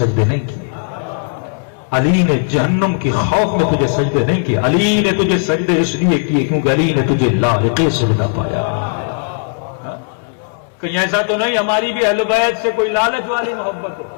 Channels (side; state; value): right; silent; 69 dB below the other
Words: نہیں کیے، علی نے جہنم کی خوف میں تجھے سجدے نہیں کیے، علی نے تجھے سجدے اس لیے کیے کیونکہ علی نے تجھے لائق سجدہ پایا۔ کہیں ایسا تو نہیں ہماری بھی اہل بیت سے کوئی لالچ والی محبت ہو